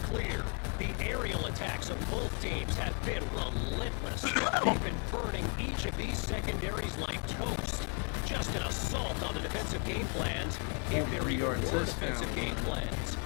the aerial attacks of both teams have been relentless. They've been burning each of these secondaries like toast. Just an assault on the defensive game plans if there are Yard poor touchdown. defensive game plans.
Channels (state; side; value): quieter; right; 40.0 dB